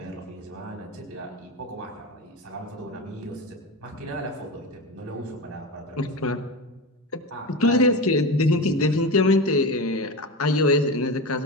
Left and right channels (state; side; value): normal; both; correlation 0.24